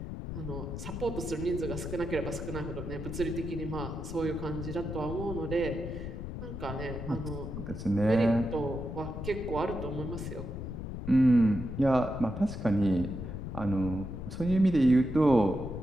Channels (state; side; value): noise; left; rumble, 7 dB below the sound